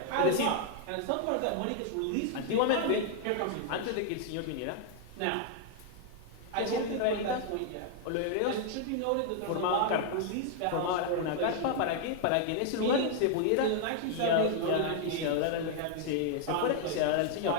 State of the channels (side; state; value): both; different; correlation 0.00